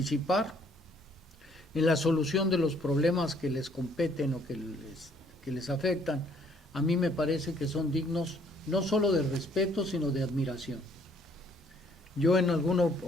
en la solución de los problemas que les competen o que les afectan, a mí me parece que son dignos no solo de respeto, sino de admiración. Yo en alguna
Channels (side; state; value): both; normal; correlation 0.64